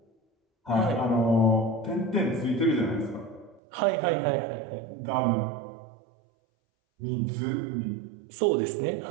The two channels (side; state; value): left; drops out; at 3.6 s